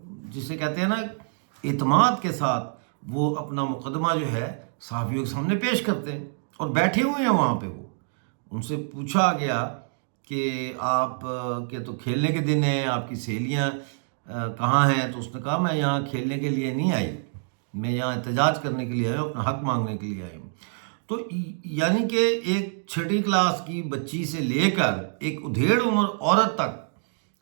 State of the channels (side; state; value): left; silent; digital silence